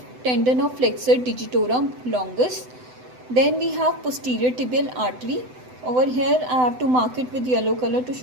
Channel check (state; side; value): late; left; 7.9 ms